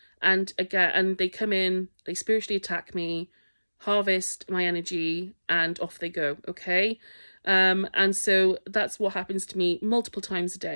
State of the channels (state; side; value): inverted; both; correlation -1.00